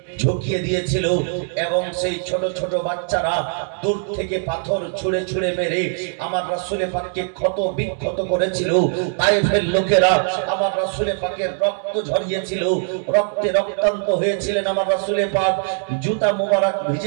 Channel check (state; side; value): silent; left; 65 dB below the other